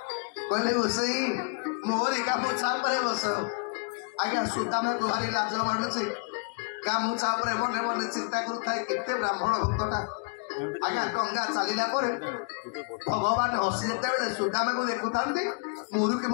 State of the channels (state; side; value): quieter; right; 37.5 dB